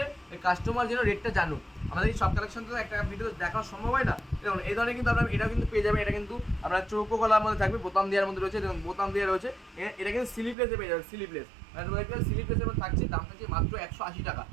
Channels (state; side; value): drops out; left; at 10.6 s